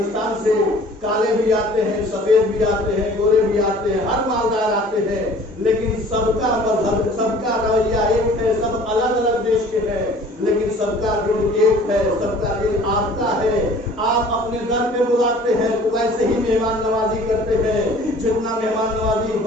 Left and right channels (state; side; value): normal; both; correlation 0.49